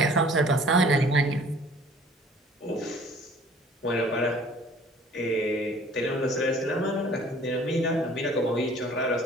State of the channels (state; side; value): normal; both; correlation 0.52